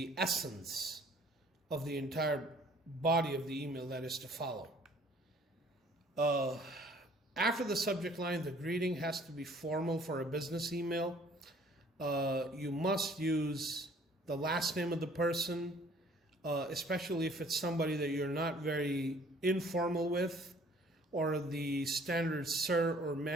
essence of the entire body of the email that is to follow. After the subject line, the greeting has to be formal for a business email. You must use the last name of the person, especially if it's somebody that you're not very informal with, or the standard sir or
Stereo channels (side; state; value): both; normal; correlation 0.56